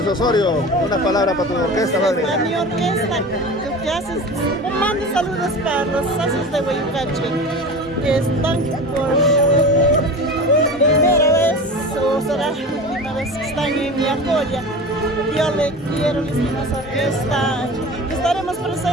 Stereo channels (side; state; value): both; normal; correlation 0.33